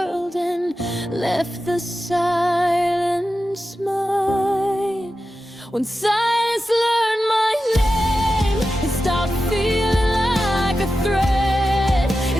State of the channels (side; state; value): both; normal; correlation 0.92